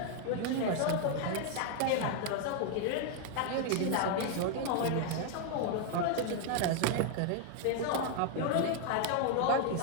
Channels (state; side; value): different; both; correlation 0.00